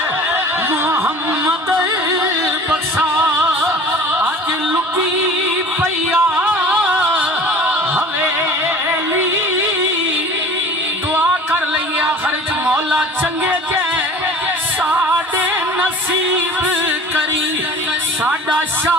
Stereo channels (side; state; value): both; normal; correlation 0.43